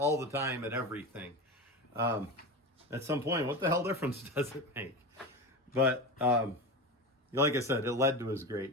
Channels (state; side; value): normal; both; correlation 0.25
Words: the time at everything. At some point, what the hell difference does it make? But like I said, it led to his